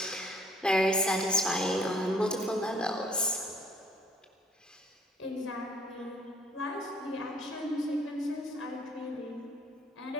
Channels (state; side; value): normal; both; correlation 0.59